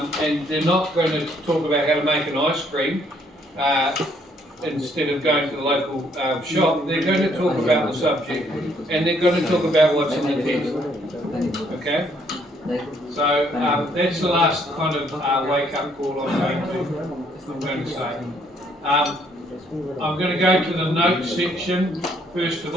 and they're not going to talk about how to make an ice cream instead of going to the local shop. They're going to talk about the subject, and they're going to talk about what's in the test. Okay? So that's the last kind of wake-up call I'm going to say. I'm going to go to the notes section first of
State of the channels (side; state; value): both; normal; correlation 0.67